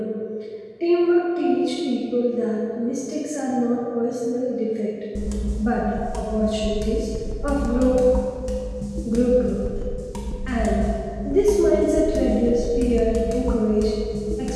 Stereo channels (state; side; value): identical; both; correlation 1.00